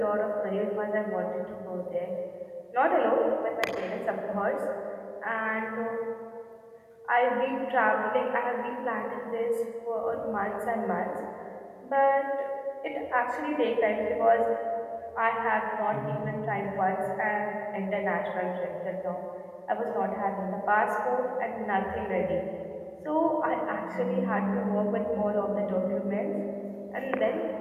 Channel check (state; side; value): identical; both; correlation 1.00